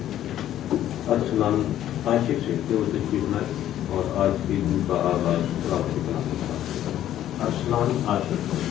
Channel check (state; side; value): quieter; right; 12.0 dB